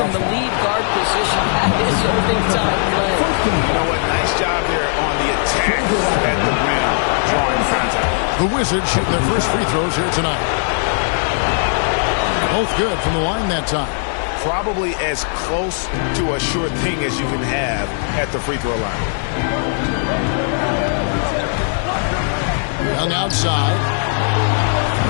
the lead guard position. That is a big-time play. You know what? Nice job there on the attack at the rim, drawing contact. The Wizards shooting their first free throws here tonight. Both good from the line that time. Probably as close to a sure thing as you can have at the free throw line. Young outside.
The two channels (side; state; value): right; silent; 67 dB below the other